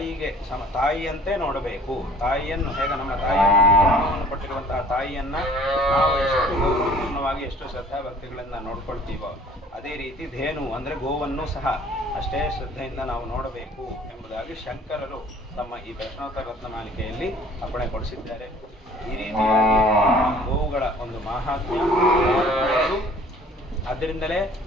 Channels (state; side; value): normal; both; correlation 0.52